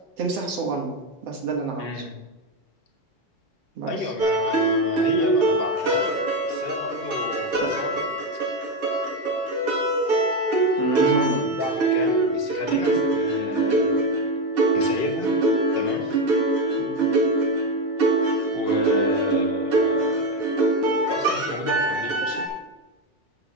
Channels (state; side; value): late; left; 2.3 ms